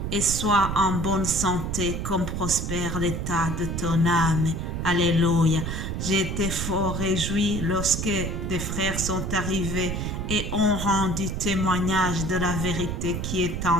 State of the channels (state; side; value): noise; right; rumble, 3 dB below the sound